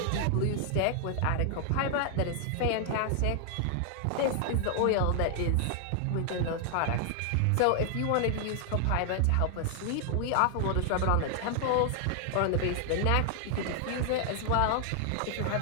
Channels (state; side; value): different; both; correlation 0.00